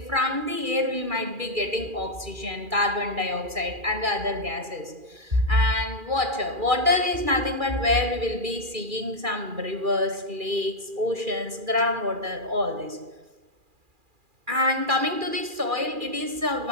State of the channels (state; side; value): late; left; 2.4 ms